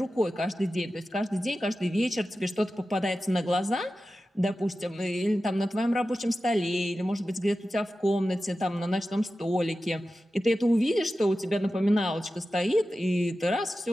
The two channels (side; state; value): both; normal; correlation 0.93